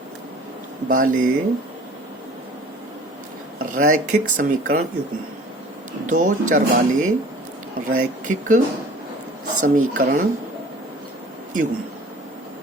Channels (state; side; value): normal; both; correlation 0.47